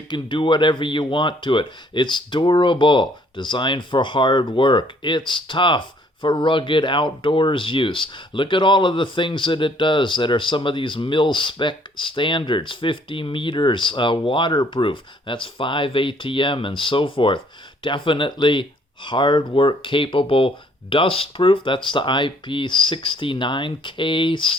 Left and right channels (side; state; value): both; normal; correlation 0.62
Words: can do whatever you want to it. It's durable, designed for hard work. It's tough for rugged outdoors use. Look at all of the things that it does that are some of these mil-spec standards. 50 meters, waterproof. That's 5 ATM and so forth. Definitely hard work capable. Dust-proof, that's the IP69K